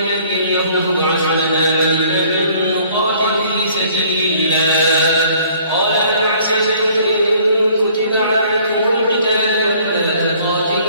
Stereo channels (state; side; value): inverted; both; correlation -0.57